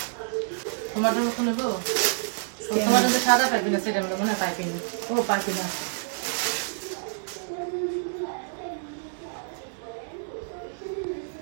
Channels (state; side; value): silent; left; digital silence